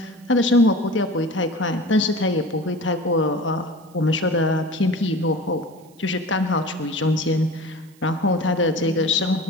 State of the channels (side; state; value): right; noise; hiss, 30 dB below the sound